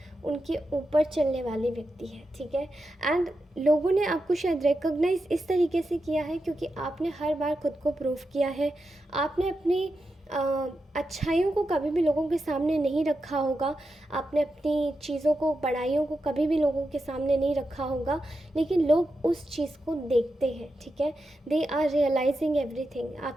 उनके ऊपर चलने वाले व्यक्ति हैं, ठीक है। एंड लोगों ने आपको शायद रिकॉग्नाइज इस तरीके से किया है क्योंकि आपने हर बार खुद को प्रूव किया है। आपने अपनी अच्छाइयों को कभी भी लोगों के सामने नहीं रखा होगा, आपने अपनी चीज़ों को, बड़ाइयों को कभी भी लोगों के सामने नहीं रखा होगा, लेकिन लोग उस चीज़ को देखते हैं, ठीक है। दे आर रियलाइजिंग एवरीथिंग,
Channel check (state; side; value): normal; both; correlation 0.88